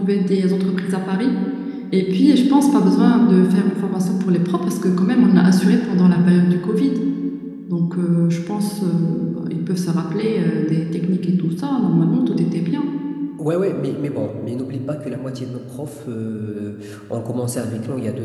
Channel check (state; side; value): identical; both; correlation 1.00